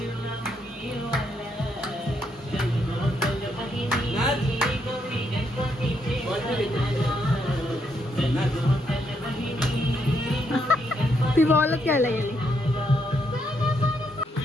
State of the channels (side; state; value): both; normal; correlation 0.76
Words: ती बॉल खेळायला गेली.